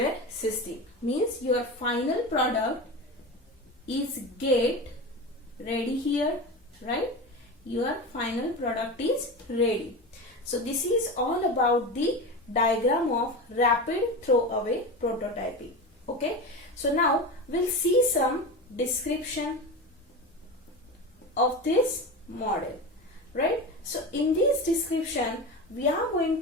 system. Means your final product is get ready here, right? Your final product is ready. So this is all about the diagram of rapid throwaway prototyping. Okay, so now we'll see some description of this model, right? So in this description we are going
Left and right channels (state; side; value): normal; both; correlation 0.25